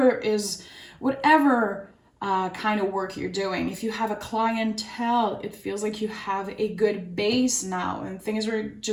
kind of work you're doing, if you have a clientele, it feels like you have a good base now and things are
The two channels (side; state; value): both; identical; correlation 1.00